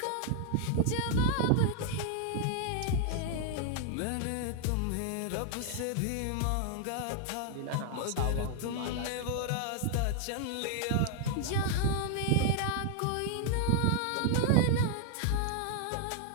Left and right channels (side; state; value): both; different; correlation 0.00